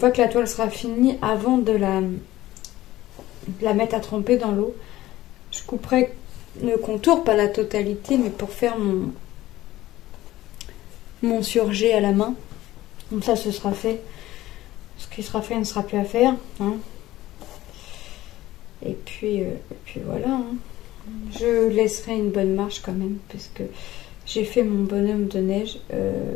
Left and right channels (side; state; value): right; quieter; 15.8 dB